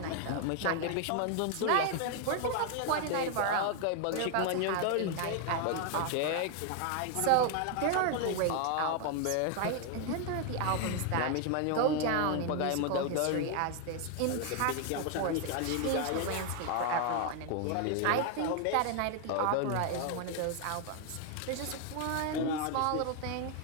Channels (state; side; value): different; both; correlation 0.00